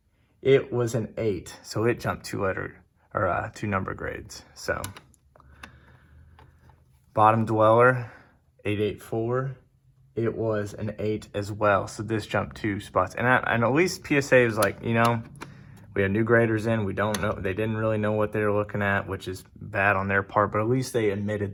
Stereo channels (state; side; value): identical; both; correlation 1.00